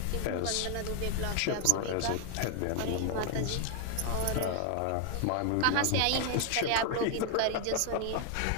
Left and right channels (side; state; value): both; different; correlation 0.01